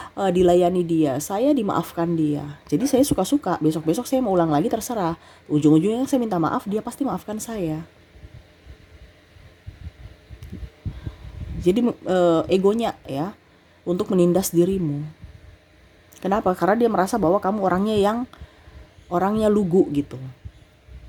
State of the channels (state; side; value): identical; both; correlation 1.00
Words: dilayani dia, saya dimaafkan dia. Jadi saya suka-suka, besok-besok saya mau ulang lagi terserah. Ujung-ujungnya saya minta maaf, dia pasti maafkan saya. Jadi egonya ya untuk menindas dirimu. Kenapa? Karena dia merasa bahwa kamu orangnya lugu gitu,